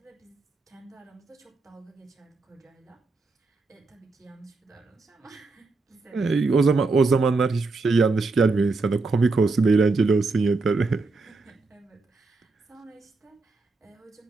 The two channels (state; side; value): quieter; left; 3.8 dB